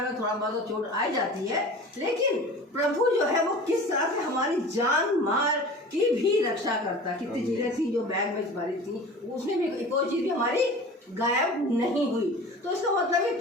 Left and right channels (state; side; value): normal; both; correlation 0.39